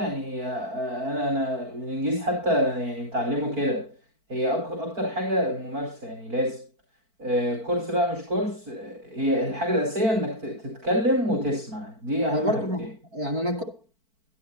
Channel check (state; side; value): late; left; 4.5 ms